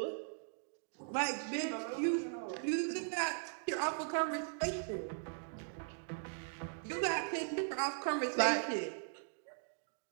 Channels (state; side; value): silent; left; digital silence